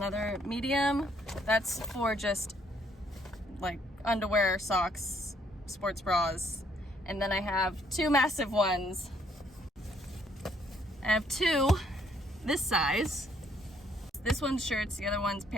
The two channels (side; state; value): both; normal; correlation 0.67